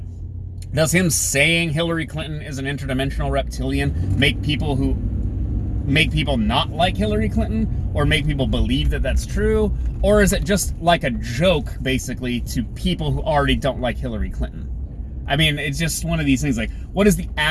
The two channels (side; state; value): both; identical; correlation 1.00